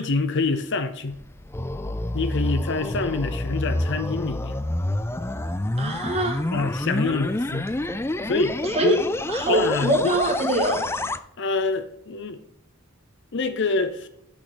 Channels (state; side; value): normal; both; correlation 0.41